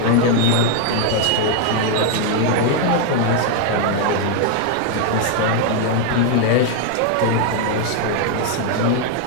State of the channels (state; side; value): different; both; correlation 0.00